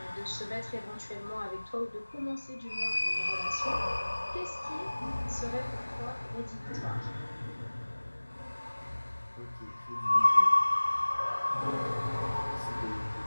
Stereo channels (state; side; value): inverted; both; correlation -1.00